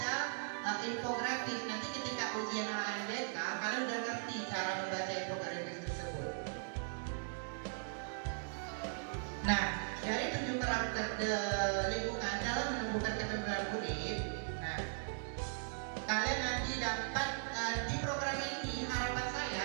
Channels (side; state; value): left; silent; digital silence